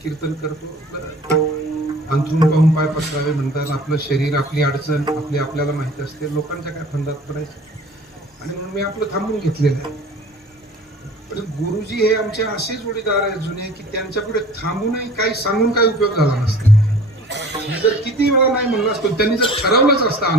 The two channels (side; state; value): both; normal; correlation 0.45